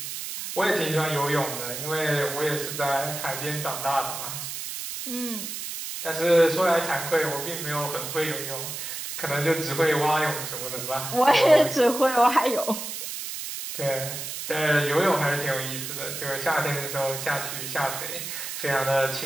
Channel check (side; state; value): right; noise; hiss, 6 dB below the sound